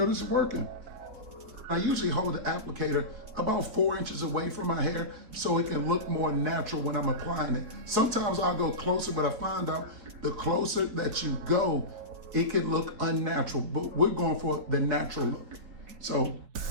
it's working. I usually hold the applicator about 4 inches away from my hair so it can look more natural when I'm applying it. Sometimes I'll go closer, but I find out the closer that you go, it can look unnatural, but we're going for the natural look. So.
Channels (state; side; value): late; left; 4.5 ms